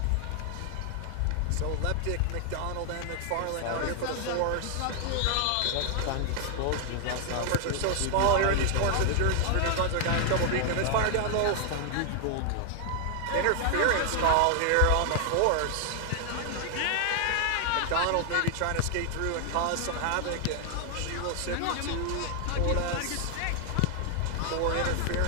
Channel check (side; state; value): both; different; correlation 0.00